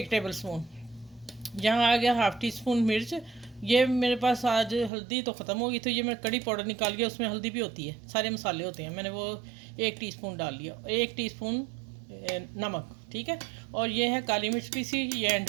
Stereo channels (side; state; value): left; drops out; at 4.9 s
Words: टेबल स्पून। यहाँ आ गया हाफ़ टी स्पून मिर्च। ये मेरे पास आज हल्दी तो ख़त्म हो गई, तो ये मैं कड़ी पाउडर निकाल के, उसमें हल्दी भी होती है, सारे मसाले होते हैं, मैंने वो 1 टीस्पून डाल लिया। 1 टीस्पून नमक, ठीक है। और ये है काली मिर्च पीसी, ये एंड